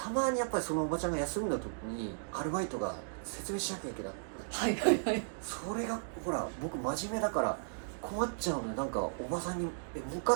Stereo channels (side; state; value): left; silent; digital silence